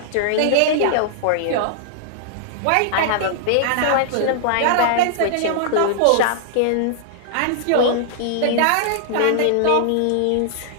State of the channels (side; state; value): both; different; correlation -0.01